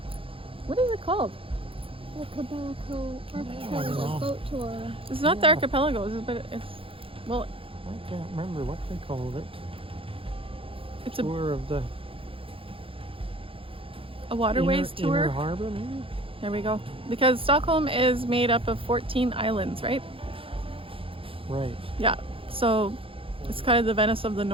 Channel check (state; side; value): late; left; 0.26 ms